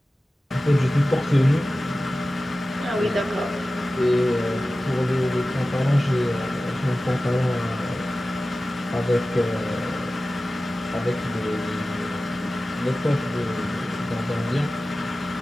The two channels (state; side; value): normal; both; correlation 0.96